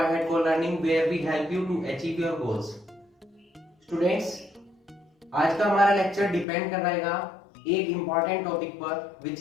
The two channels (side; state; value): right; drops out; at 6.5 s